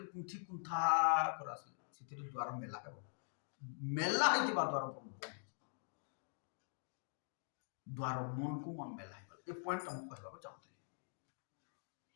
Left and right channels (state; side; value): silent; right; digital silence